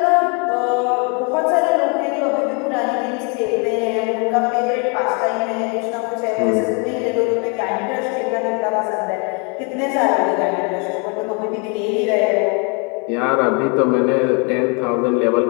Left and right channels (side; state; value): right; quieter; 34.4 dB